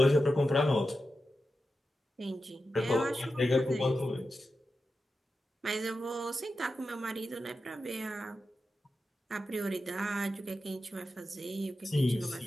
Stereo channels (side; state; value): both; normal; correlation 0.91